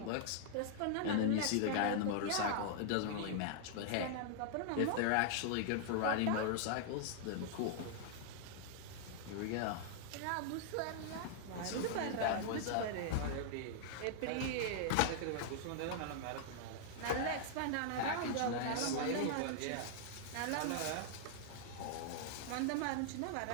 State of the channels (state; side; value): different; both; correlation -0.01